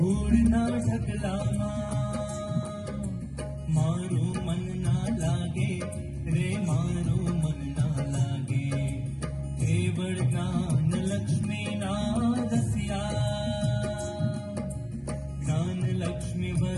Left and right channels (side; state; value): both; identical; correlation 1.00